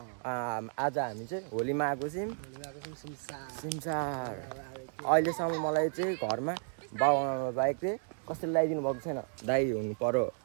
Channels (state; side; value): silent; left; 56 dB below the other